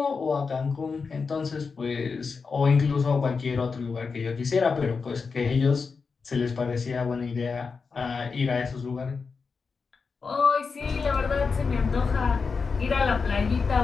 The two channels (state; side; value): quieter; right; 5.0 dB